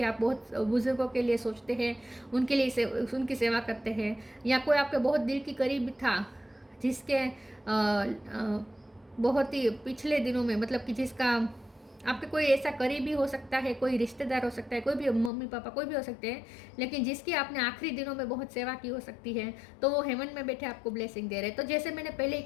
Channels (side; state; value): right; drops out; at 15.3 s